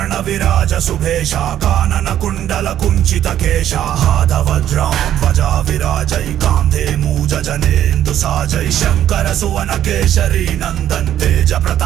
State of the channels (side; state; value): left; quieter; 11.3 dB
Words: विराज सुभेशा कानन कुंडल कुंचित केशा हाथ वज्रं ध्वजा विराजै कांधे मूज जनेन्दु साजै शंकर सुवन केशरी नंदन तेज